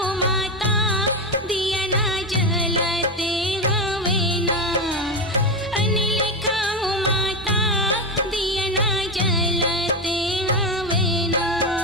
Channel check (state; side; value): normal; both; correlation 0.14